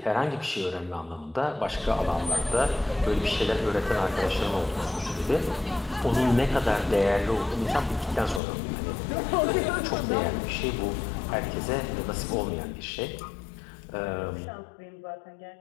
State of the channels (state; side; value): drops out; right; at 8.4 s